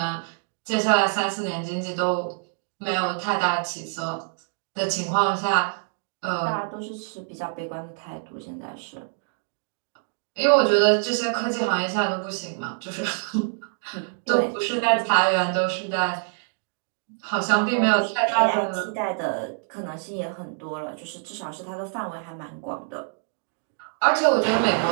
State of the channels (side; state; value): left; silent; digital silence